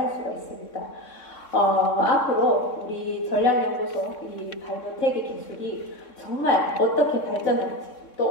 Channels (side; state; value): right; late; 3.6 ms